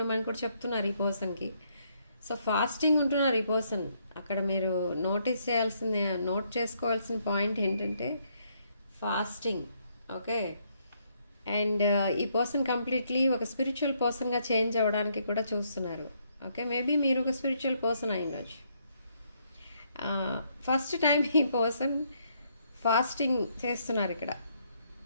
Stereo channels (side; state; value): both; inverted; correlation -0.72